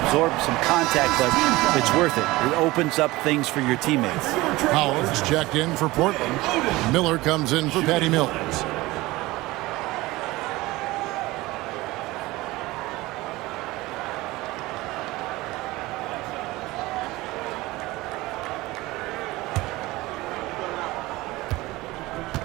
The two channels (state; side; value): quieter; left; 19.8 dB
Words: some contact, but it's worth it. It opens up things for your teammates. Howard's checked in for Portland. Miller comes in for Patty Mills.